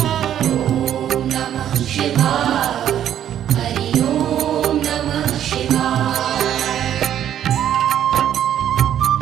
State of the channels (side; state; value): left; quieter; 10.5 dB